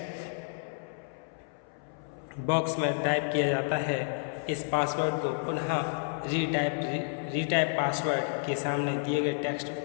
बॉक्स में टाइप किया जाता है। इस पासवर्ड को पुनः रीटाइप पासवर्ड के सामने दिए गए टेक्स्ट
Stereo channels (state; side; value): silent; right; 57 dB below the other